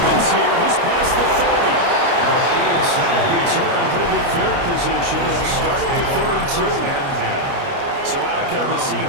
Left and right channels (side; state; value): left; late; 29 ms